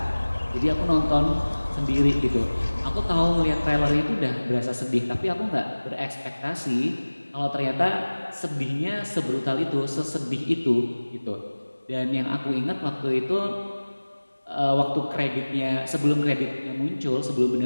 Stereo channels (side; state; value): both; inverted; correlation -1.00